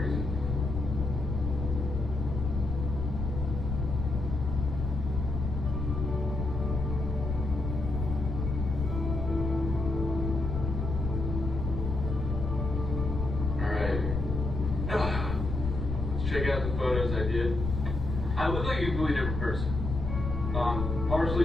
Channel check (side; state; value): left; noise; rumble, 3 dB below the sound